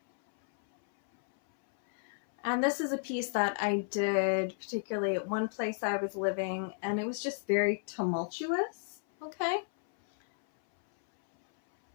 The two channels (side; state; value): right; silent; 56 dB below the other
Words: And this is a piece that I did particularly at one place I was living, and it was just very tumultuous. Okay.